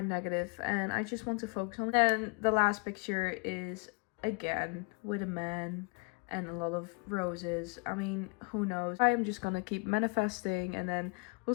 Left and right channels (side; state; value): right; quieter; 32.0 dB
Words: negative and I just want to focus on. Then the last picture is again with a man and a lot of roses. I mean, who knows? I'm just gonna keep manifesting and then